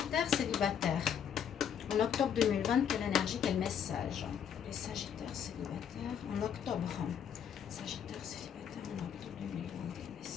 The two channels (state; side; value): quieter; right; 8.4 dB